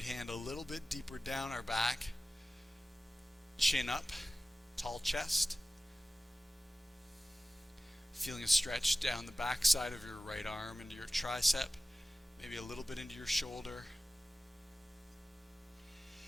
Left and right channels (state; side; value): normal; both; correlation 0.96